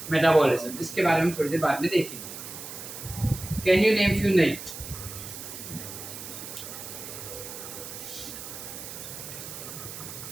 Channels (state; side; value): noise; right; hiss, 10 dB below the sound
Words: metabolism. इसके बारे में थोड़ी देर बाद में देखेंगे. Can you name few names?